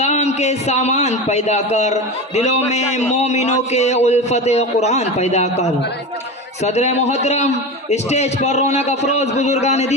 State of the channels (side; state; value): both; normal; correlation 0.25